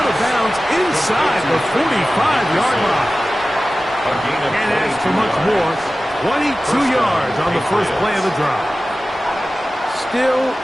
of bounds inside the 45-yard line. And as for much more, 22 yards on the first play of the drive. Still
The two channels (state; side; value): normal; both; correlation 0.96